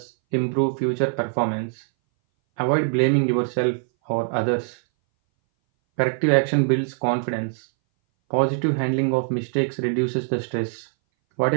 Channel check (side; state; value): left; silent; 60 dB below the other